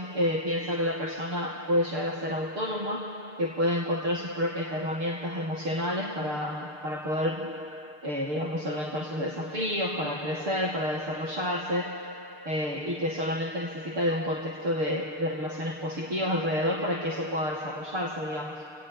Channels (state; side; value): late; left; 6.6 ms